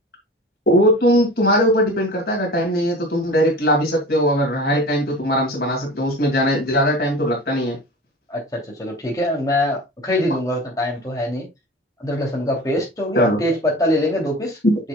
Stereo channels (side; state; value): both; normal; correlation 0.37